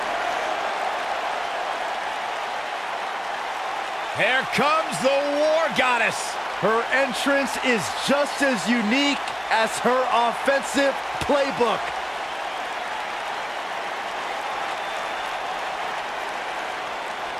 Here comes the War Goddess. Her entrance is just as unique as her offensive playbook.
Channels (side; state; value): both; identical; correlation 1.00